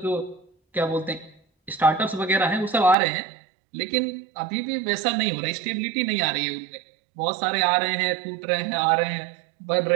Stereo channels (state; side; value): drops out; left; at 3.0 s